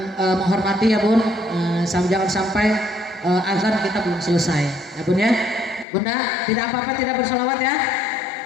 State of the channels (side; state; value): right; drops out; at 5.9 s